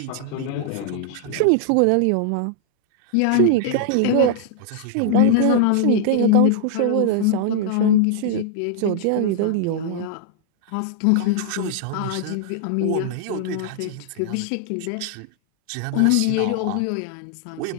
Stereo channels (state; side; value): different; both; correlation -0.01